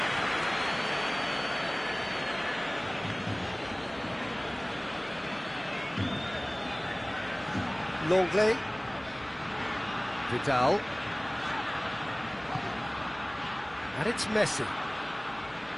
Longley. Vidal. And it's Messi.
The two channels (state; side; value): noise; left; hum, 24 dB below the sound